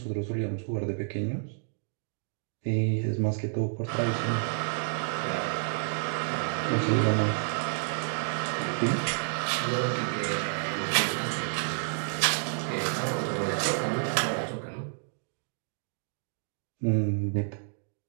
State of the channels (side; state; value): left; silent; digital silence